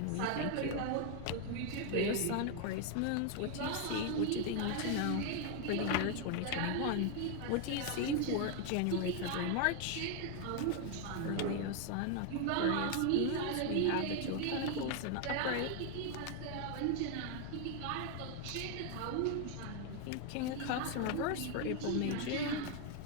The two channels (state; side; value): different; both; correlation 0.01